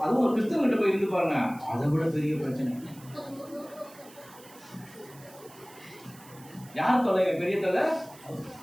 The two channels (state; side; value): noise; right; hiss, 22 dB below the sound